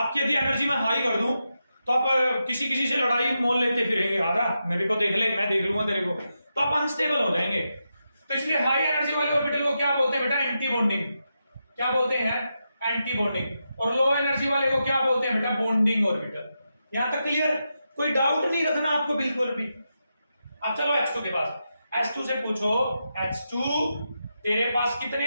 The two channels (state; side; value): inverted; both; correlation -0.87